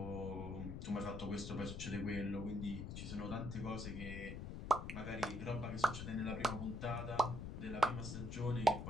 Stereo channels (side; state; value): left; noise; rumble, 6 dB below the sound